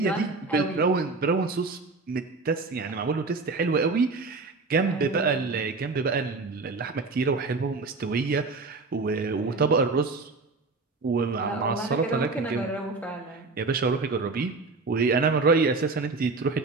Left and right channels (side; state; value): left; quieter; 3.9 dB